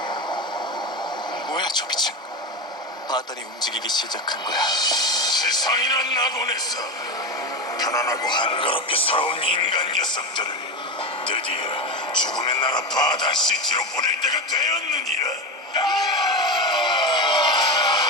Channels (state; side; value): normal; both; correlation 0.18